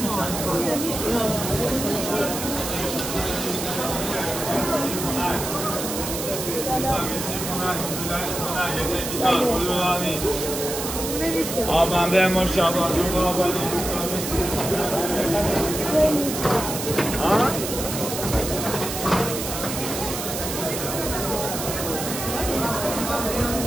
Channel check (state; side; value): noise; right; hiss, 5 dB below the sound